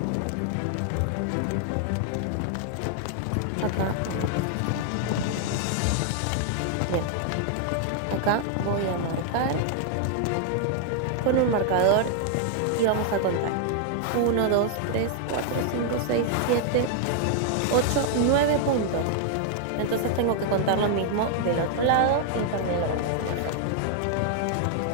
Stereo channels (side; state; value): both; different; correlation 0.00